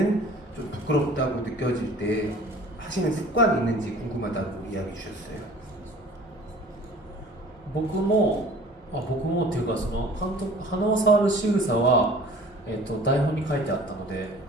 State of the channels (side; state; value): both; normal; correlation 0.47